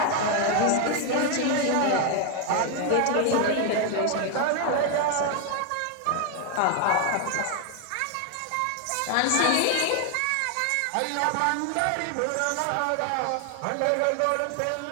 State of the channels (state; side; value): different; both; correlation 0.00